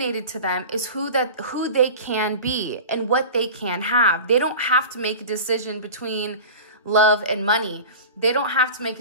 to them is who they can be and what they can have. They don't have to make a decision between love and money. They don't have to make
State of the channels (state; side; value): inverted; both; correlation -0.34